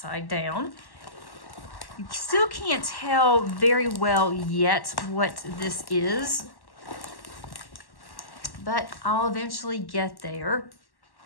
down. You still can't tell very well yet what this is, but I'll eventually get there.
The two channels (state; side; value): late; right; 1.1 ms